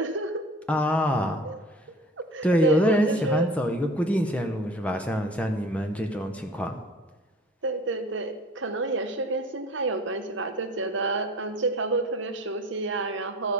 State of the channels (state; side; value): normal; both; correlation 0.44